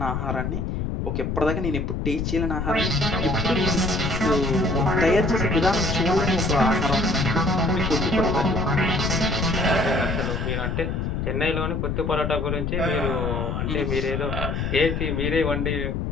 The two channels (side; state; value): left; noise; rumble, 1 dB below the sound